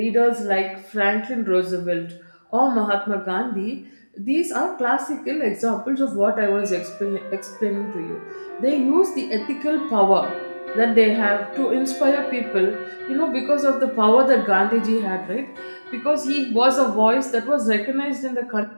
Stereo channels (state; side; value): inverted; both; correlation -1.00